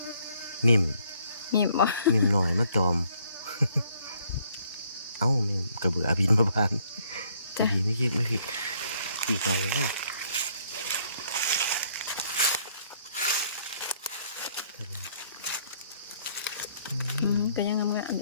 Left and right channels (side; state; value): both; inverted; correlation -0.66